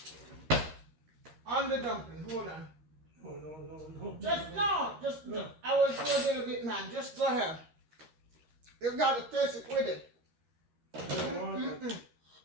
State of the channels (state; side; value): late; left; 13 ms